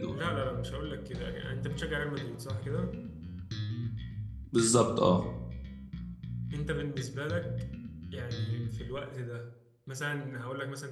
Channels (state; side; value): identical; both; correlation 1.00